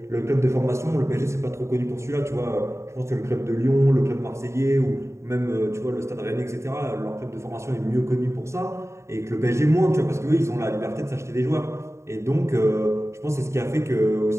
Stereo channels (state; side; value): late; left; 0.14 ms